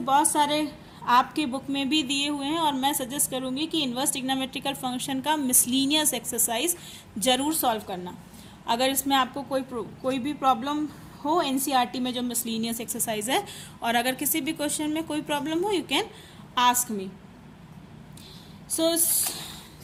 सारे आपके बुक में भी दिए हुए हैं, और मैं सजेस्ट करूंगी कि इनवर्स ट्रिग्नोमेट्रिकल फंक्शन का मिसलीनियस एक्सरसाइज ज़रूर सॉल्व करना। अगर इसमें आपको कोई भी प्रॉब्लम हो एनसीईआरटी में जो मिसलीनियस एक्सरसाइज है, और अगर किसी भी क्वेश्चन में कोई प्रॉब्लम हो, you can ask me. So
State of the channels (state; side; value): identical; both; correlation 1.00